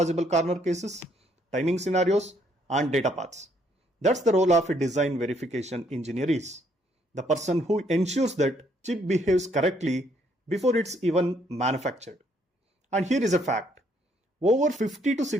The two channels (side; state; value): both; normal; correlation 0.69